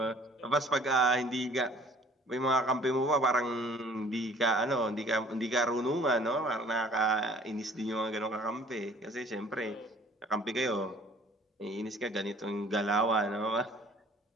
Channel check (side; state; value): both; normal; correlation 0.53